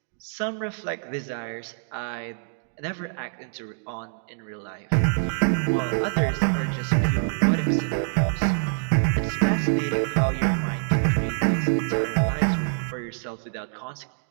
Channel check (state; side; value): silent; left; 61 dB below the other